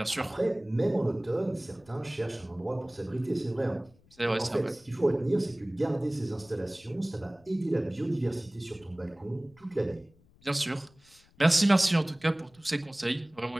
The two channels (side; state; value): left; noise; rumble, 29 dB below the sound